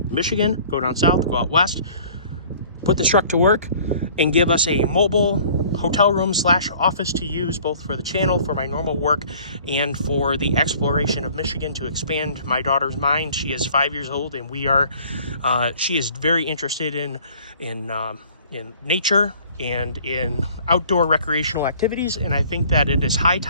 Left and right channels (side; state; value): both; inverted; correlation -0.52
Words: Michigan, go down south, go out west, put this truck to work, and give us a mobile hotel room / office to use both for the channel, for my normal work, and for the exploration of Michigan to expand my daughter's mind. She is 5 years old, and she is very interested in nature and in outdoor recreational activities, and I think that it is high